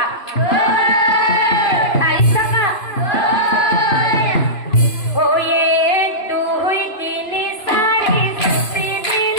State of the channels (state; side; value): late; right; 3.0 ms